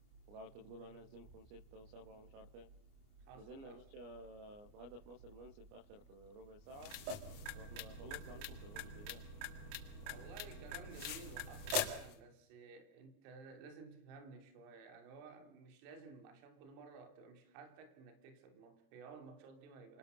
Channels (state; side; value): late; left; 29 ms